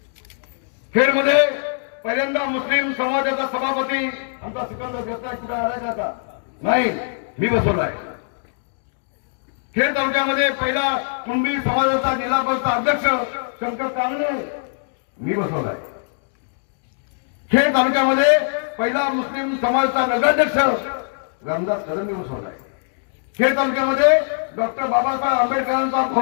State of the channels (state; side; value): silent; right; digital silence